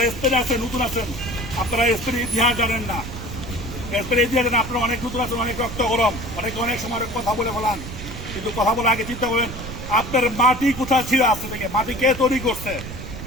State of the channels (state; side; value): noise; right; rumble, 10 dB below the sound